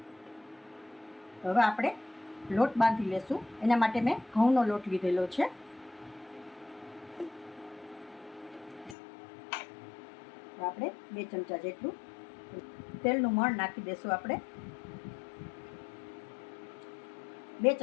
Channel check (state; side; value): drops out; right; at 9.0 s